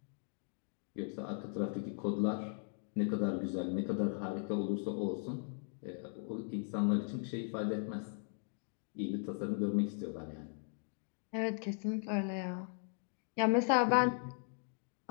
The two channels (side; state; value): right; silent; 52 dB below the other